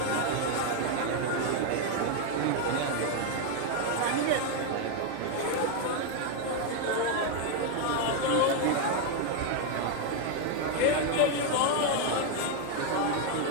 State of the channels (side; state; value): both; different; correlation 0.01